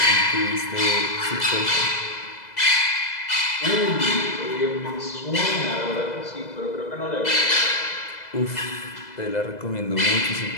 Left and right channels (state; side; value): late; right; 2.0 ms